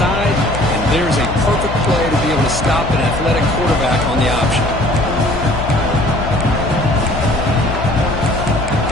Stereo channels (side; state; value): left; noise; hum, 8 dB below the sound